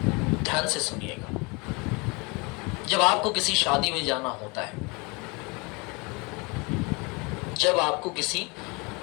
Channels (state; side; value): quieter; right; 28.3 dB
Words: ध्यान से सुनिएगा। जब आपको किसी शादी में जाना होता है, जब आपको किसी